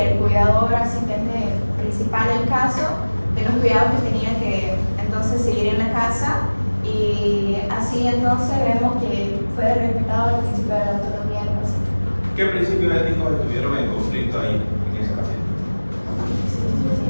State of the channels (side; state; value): both; inverted; correlation -1.00